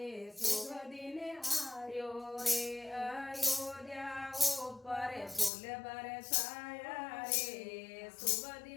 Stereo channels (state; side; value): drops out; right; at 5.5 s